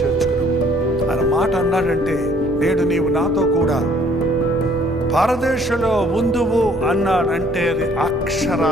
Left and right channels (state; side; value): normal; both; correlation 0.60